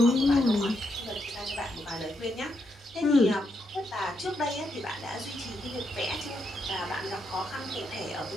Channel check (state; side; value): normal; both; correlation 0.80